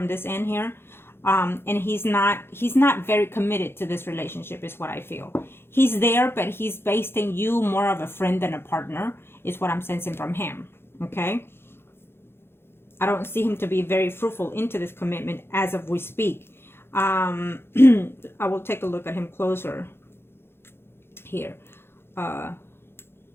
this end here. And he's not very committed to this relationship is what I feel. He's there, but he's basing you more of a friend than a partner is what I'm sensing from him, okay? I don't see him to be very fruitful into this commitment as of we speak. I will take a look at him closer here. I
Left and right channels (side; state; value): right; late; 0.11 ms